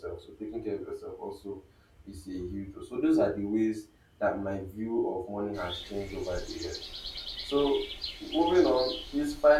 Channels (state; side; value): identical; both; correlation 1.00